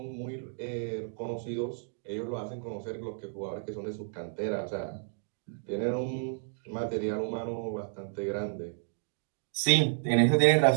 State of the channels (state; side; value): silent; left; digital silence